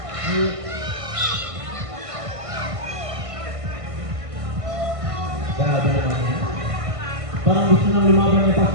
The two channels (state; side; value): late; left; 1.5 ms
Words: Grabe naman yan. Parang gusto nang lumaban ni